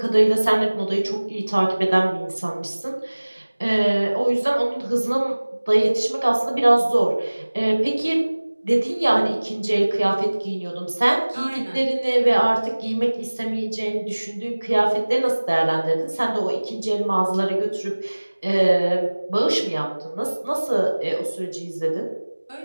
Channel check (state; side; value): inverted; both; correlation -1.00